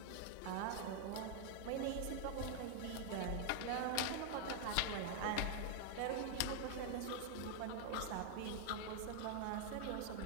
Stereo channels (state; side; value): different; both; correlation 0.00